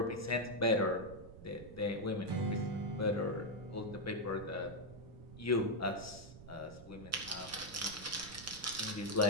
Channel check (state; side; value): noise; right; rumble, 15 dB below the sound